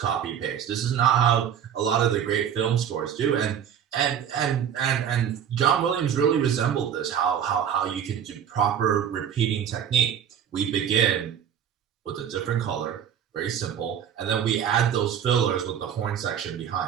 paste. This is not how a lot of the great film scores do. And John Williams really resembled this. How you can do proper repeating technique. We begin with a different color, very simple, and then we add those fillers with the horn section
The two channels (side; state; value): left; quieter; 8.9 dB